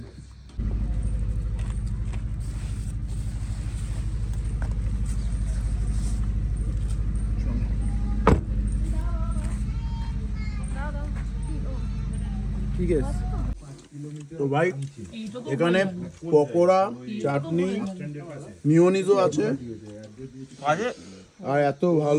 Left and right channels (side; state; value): both; identical; correlation 1.00